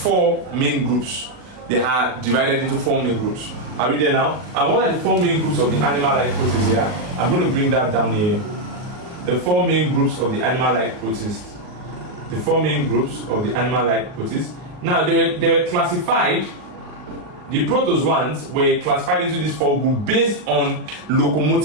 main groups. They are divided into 4 main groups. Are we there now? And what are the 4 main groups of the animal-like protists here? I'm going to bring that down here. The 4 main groups of the animal-like protists. The 4 main groups of the animal-like protists. Now, they were classified. The protozoans were classified into these 4 groups based on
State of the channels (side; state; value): left; late; 39 ms